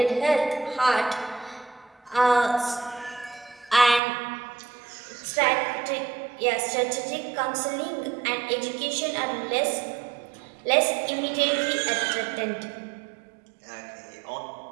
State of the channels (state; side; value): drops out; left; at 4.0 s